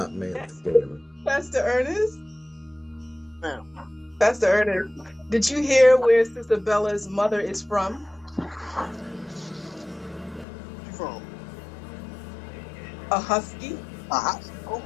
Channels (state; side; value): drops out; right; at 10.5 s